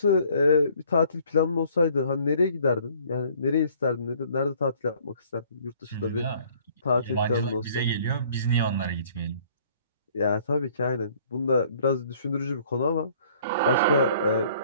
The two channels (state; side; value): inverted; both; correlation -0.57